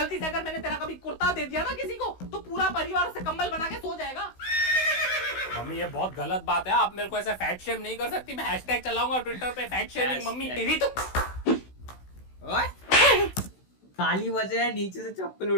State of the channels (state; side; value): late; right; 16 ms